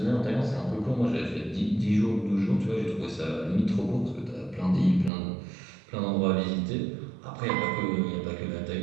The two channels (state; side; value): drops out; left; at 5.1 s